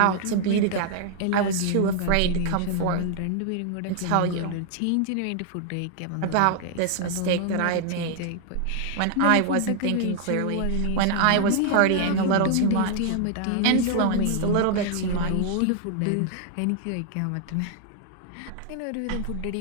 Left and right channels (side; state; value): both; different; correlation 0.00